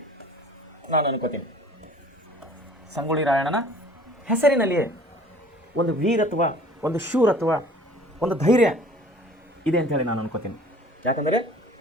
ನಾನು ಅನ್ಕೋತೀನಿ. ಸಂಗೊಳ್ಳಿ ರಾಯಣ್ಣನ ಹೆಸರಿನಲ್ಲಿಯೇ ಒಂದು ವೀರತ್ವ, ಒಂದು ಶೂರತ್ವ, ಒಂದು ಧೈರ್ಯ ಇದೆ ಅಂಥೇಳಿ ನಾನು ಅನ್ಕೋತೀನಿ. ಯಾಕಂದರೆ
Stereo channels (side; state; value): both; normal; correlation 0.50